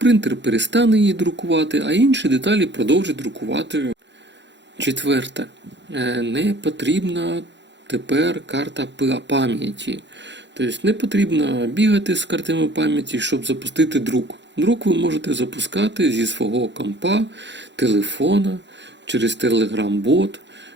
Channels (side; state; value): left; late; 0.52 ms